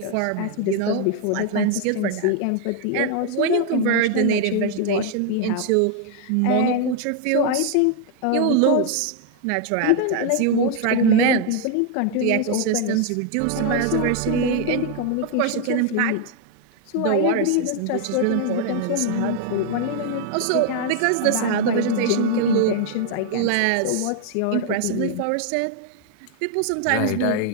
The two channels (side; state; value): both; different; correlation 0.00